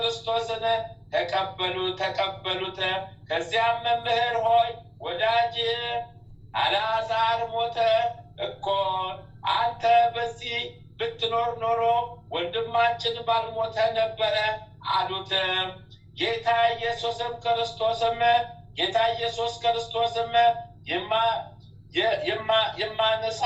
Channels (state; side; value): identical; both; correlation 1.00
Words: ተቀበሉት። ከዚያም መምህር ሆይ ወዳጅ አልዓዛር ሞተ እኮ፣ አንተ በዚህ ብትኖር ኖሮ ወንድማችን ባልሞተ ነበረ አሉት። ጌታ ኢየሱስ ክርስቶስም የማነሳ